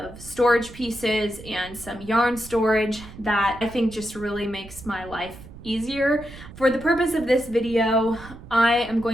storage pieces and some yarn storage that I think just really makes my life easier. For the purpose of this video, I am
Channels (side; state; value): right; noise; rumble, 16 dB below the sound